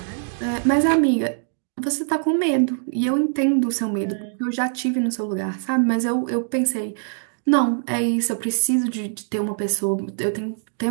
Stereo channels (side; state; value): left; silent; digital silence